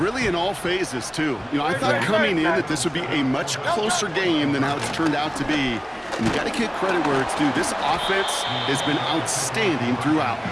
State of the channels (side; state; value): both; identical; correlation 1.00